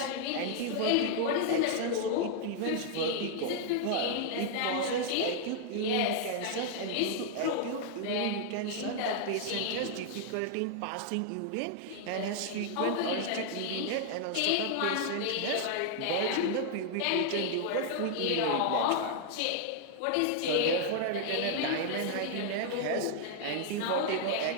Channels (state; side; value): different; both; correlation -0.01